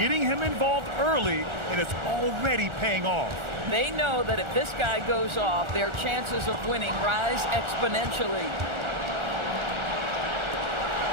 him involved early, and it's already paying off. They know that if this guy goes off, their chances of winning rise exponentially.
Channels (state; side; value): late; left; 1.4 ms